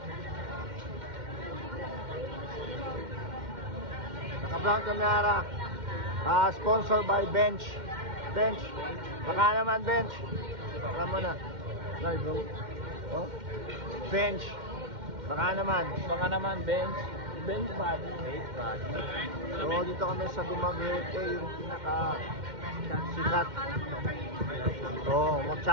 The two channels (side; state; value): left; late; 2.1 ms